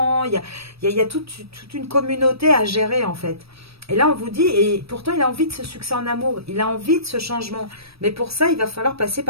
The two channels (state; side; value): late; left; 0.77 ms